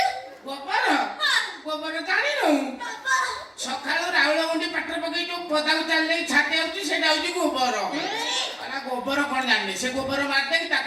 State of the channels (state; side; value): identical; both; correlation 1.00